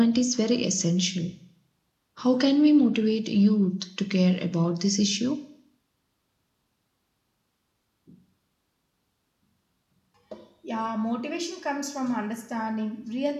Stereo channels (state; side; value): identical; both; correlation 1.00